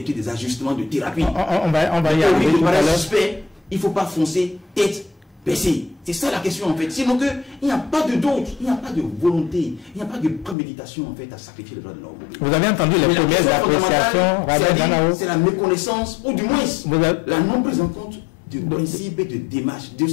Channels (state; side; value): drops out; right; at 10.6 s